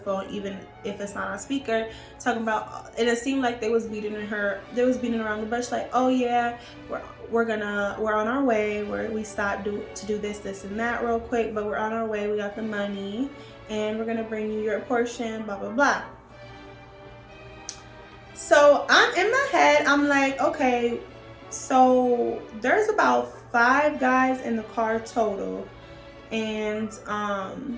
even if it's not on speaker, talking about. And it seemed like they was beating around the bush. Like, oh yeah, we're on our way. We stopped to do this and that real quick, but we're on our way. We got the money, and we're gonna bring you your portion. Blah blah blah. So I'm in my head. I'm like, okay, so there's about 5 guys in the car total, and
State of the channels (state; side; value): identical; both; correlation 1.00